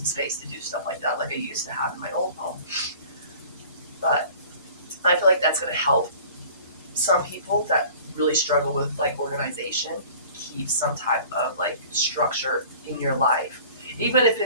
space to do stuff like that like I used to have in my old home. But I feel like that's going to help some people that really struggle with like organization keep some type of like structure in your life. Even if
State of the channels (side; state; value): both; inverted; correlation -0.46